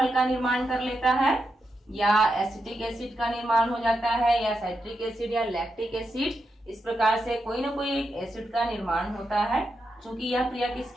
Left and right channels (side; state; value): both; normal; correlation 0.86